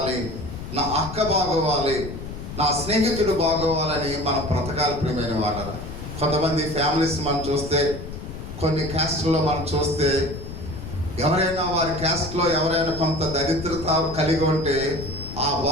నా అక్క బాగోవాలి, నా స్నేహితుడు బాగోవాలని మనం బ్రతకాలి ప్రియమైన వారు. కొంతమంది ఫ్యామిలీస్ మనం చూస్తే, కొన్ని క్యాస్ట్లో మనం చూస్తే, ఎవరైనా వారి క్యాస్ట్లో ఎవరైనా కొంత దరిద్రత కలిగి ఉంటే ఆ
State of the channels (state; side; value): noise; left; rumble, 9 dB below the sound